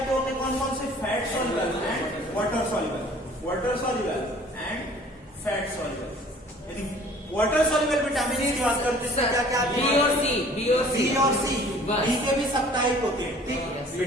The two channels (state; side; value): normal; both; correlation 0.51